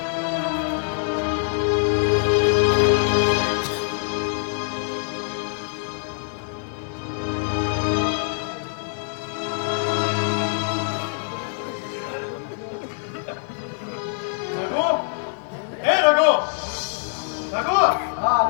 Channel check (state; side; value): silent; right; digital silence